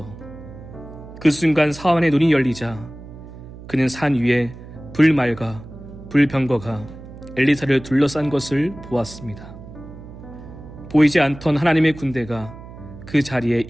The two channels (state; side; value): noise; right; hum, 16 dB below the sound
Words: 그 순간 사환의 눈이 열리자 그는 산 위에 불말과 불병거가 엘리사를 둘러싼 것을 보았습니다. 보이지 않던 하나님의 군대가 그 자리에